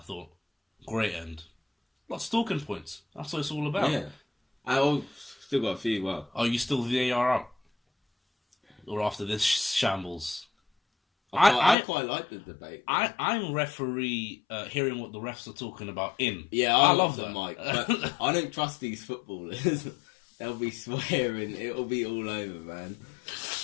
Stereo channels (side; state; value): right; drops out; at 11.8 s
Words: thought. Great end. Lots of talking points. That's what it's all about. Yeah. I still got a few, Are you still VAR out? Or after this shambles? I quite like the debate. I'm referee hearing what the refs are talking about in. Yeah, I love that, Mike. But I don't trust these footballers. They'll be swearing. It'll be all over, man.